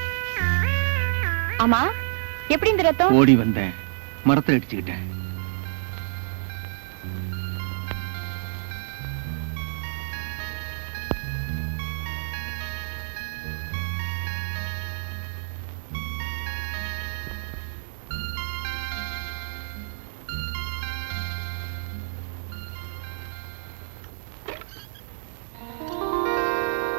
ஆமா, எப்படி இந்த ரத்தம்? ஓடி வந்தேன், மரத்தை அடிச்சுக்கிட்டேன்.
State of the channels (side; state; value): left; silent; 57 dB below the other